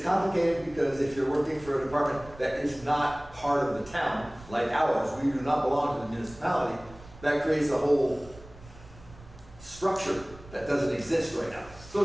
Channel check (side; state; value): right; noise; rumble, 20 dB below the sound